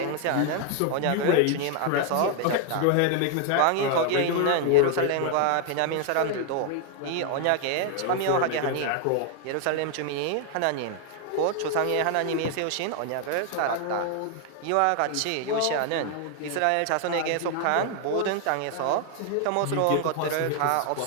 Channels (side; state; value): both; different; correlation 0.00